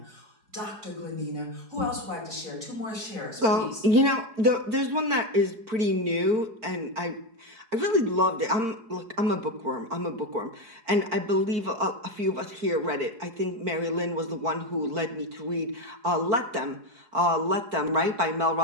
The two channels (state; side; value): late; left; 4.7 ms